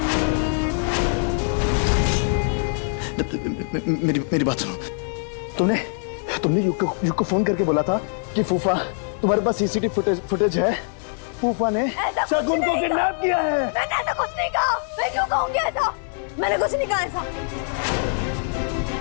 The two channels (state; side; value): silent; right; digital silence